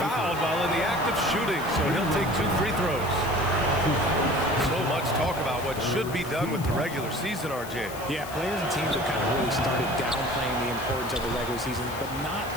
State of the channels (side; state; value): left; noise; hiss, 15 dB below the sound